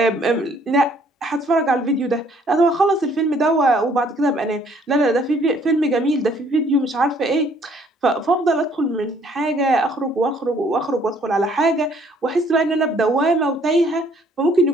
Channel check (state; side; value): normal; both; correlation 0.62